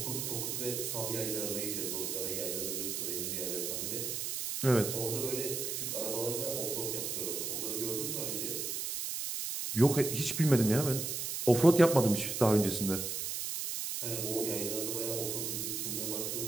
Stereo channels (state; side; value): noise; right; hiss, 3 dB below the sound